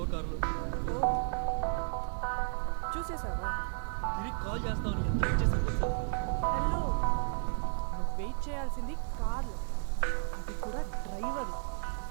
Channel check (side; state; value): left; silent; 56 dB below the other